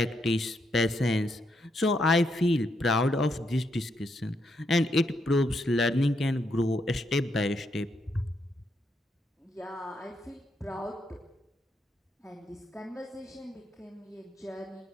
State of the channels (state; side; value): normal; both; correlation 0.78